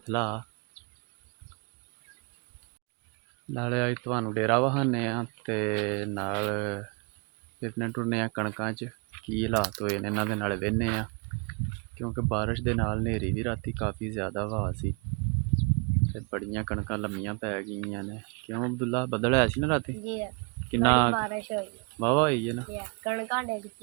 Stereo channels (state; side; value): quieter; left; 33.9 dB